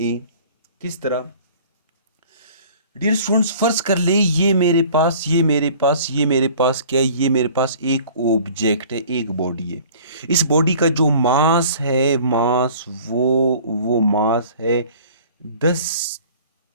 A. किस तरह? डियर स्टूडेंट्स, फर्ज कर ले ये मेरे पास क्या है, ये मेरे पास एक ऑब्जेक्ट है, एक बॉडी है। इस बॉडी का जो मास है, वो मास है 10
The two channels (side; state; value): both; inverted; correlation -0.49